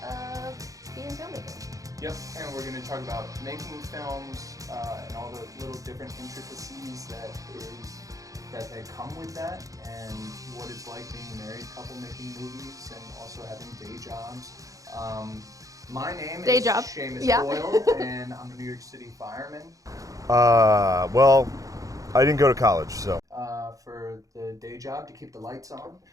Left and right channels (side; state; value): left; late; 0.16 ms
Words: being filmmakers. Yep, and we're going to talk about making films and all the little different intricacies that come with that, and what it's like being a married couple making movies and also having day jobs. My name is Seamus Doyle, and I'm a New York City fireman. Well, I didn't go to college, so. For the day job to keep the lights on.